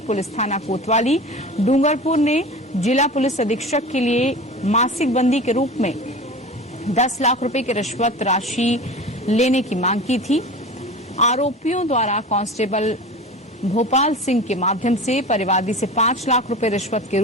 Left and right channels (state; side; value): normal; both; correlation 0.34